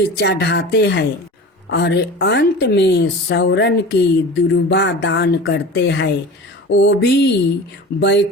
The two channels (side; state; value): both; normal; correlation 0.35